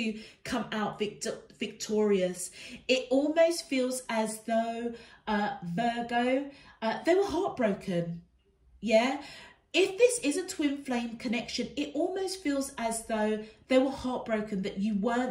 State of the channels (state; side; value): identical; both; correlation 1.00